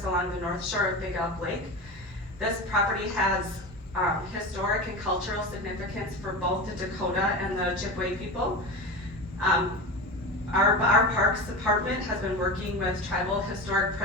along the north shore of Big Elk Lake. This property has historic and cultural significance for both the Dakota and the Ojibwe people. Our Parks Department has been working with tribal historic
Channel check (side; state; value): both; normal; correlation 0.26